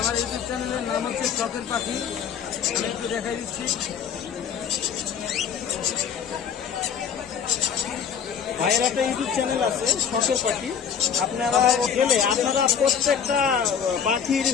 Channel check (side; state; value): right; quieter; 7.6 dB